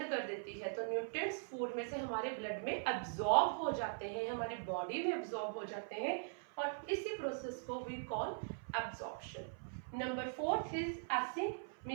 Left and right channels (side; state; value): left; silent; 50 dB below the other